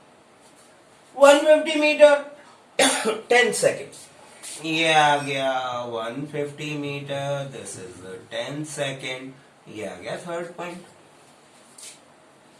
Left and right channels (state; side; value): identical; both; correlation 1.00